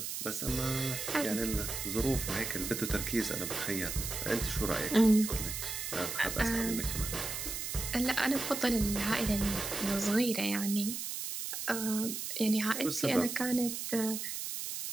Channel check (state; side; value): noise; right; hiss, 4 dB below the sound